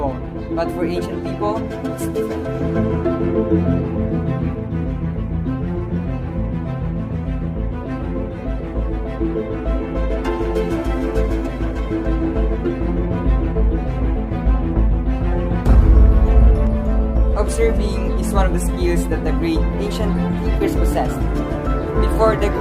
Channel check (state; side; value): identical; both; correlation 1.00